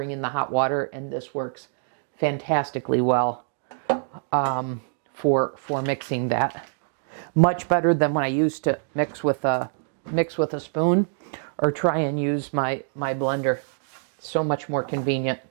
in the hot water, and this works fantastically well for mixing that. Much better than when I used to mix with a spoon or try and use my blender. So much more convenient.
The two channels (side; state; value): left; silent; digital silence